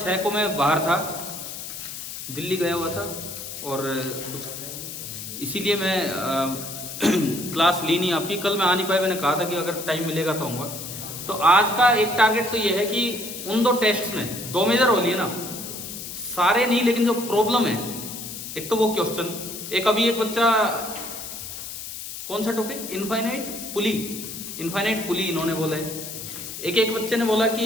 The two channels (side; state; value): left; noise; hiss, 9 dB below the sound